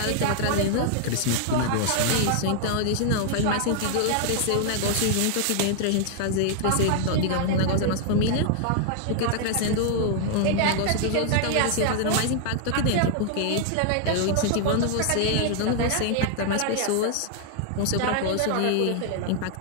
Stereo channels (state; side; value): different; both; correlation 0.00